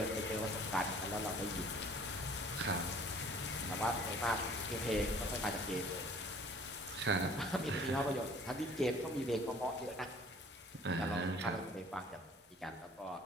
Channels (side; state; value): both; normal; correlation 0.52